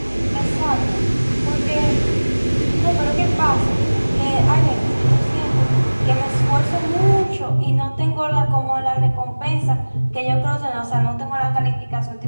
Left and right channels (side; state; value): both; inverted; correlation -1.00